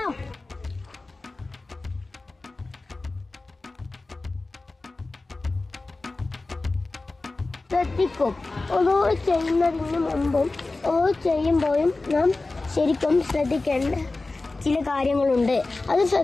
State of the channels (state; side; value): quieter; right; 3.3 dB